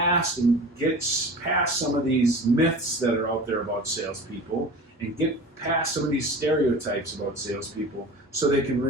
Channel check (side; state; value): both; normal; correlation 0.37